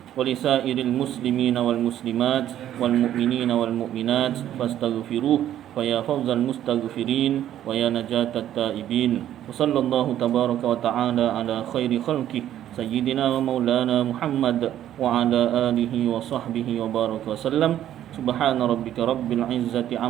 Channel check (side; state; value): left; quieter; 11.6 dB